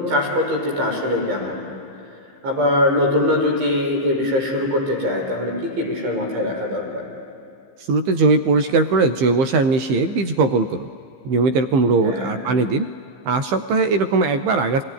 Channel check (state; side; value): late; left; 15 ms